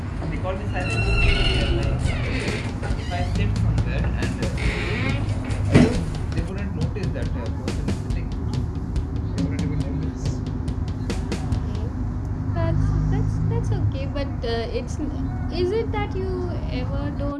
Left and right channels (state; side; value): identical; both; correlation 1.00